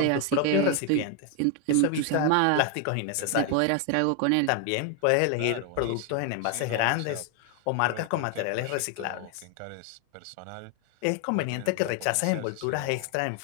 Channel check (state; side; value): different; both; correlation 0.00